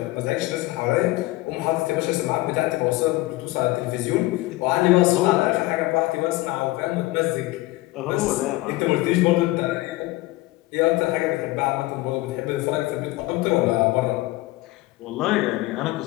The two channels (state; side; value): quieter; right; 19.5 dB